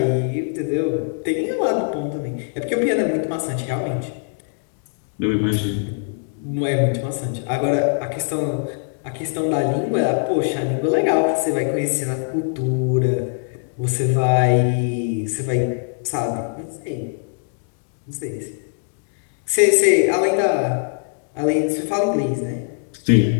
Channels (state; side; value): silent; right; 64 dB below the other